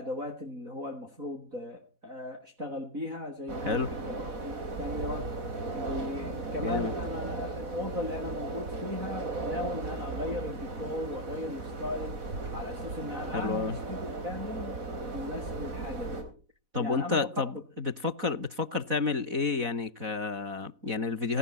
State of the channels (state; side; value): late; left; 4.1 ms